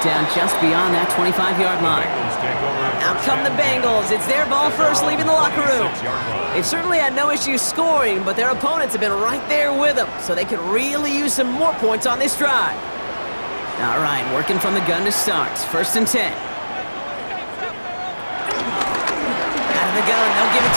down just beyond that 25-yard line. Out come the Bengals. It's their ball first, leaving the locker room. They've certainly had no issues scoring, but their opponents have been right there with them, so they could really use some more points on this drive. All right, working from the gun to start. 1st and 10. Out of the gun, they'll give it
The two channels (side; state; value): both; inverted; correlation -1.00